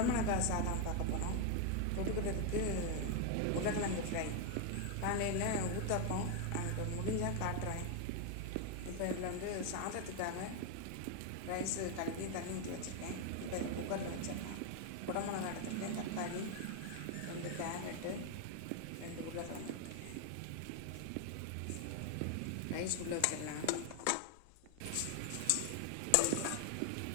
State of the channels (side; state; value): both; different; correlation 0.01